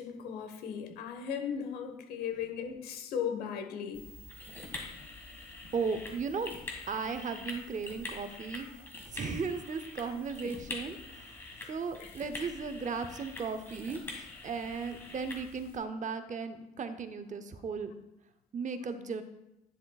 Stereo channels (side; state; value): both; normal; correlation 0.43